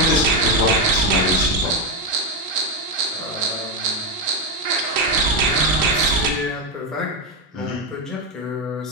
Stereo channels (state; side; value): normal; both; correlation 0.08